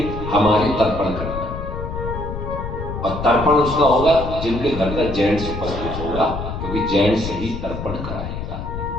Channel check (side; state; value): left; noise; rumble, 6 dB below the sound